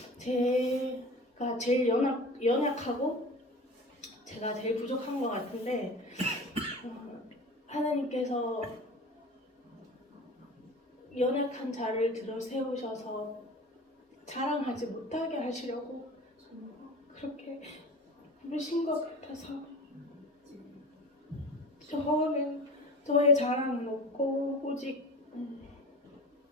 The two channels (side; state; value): both; normal; correlation 0.36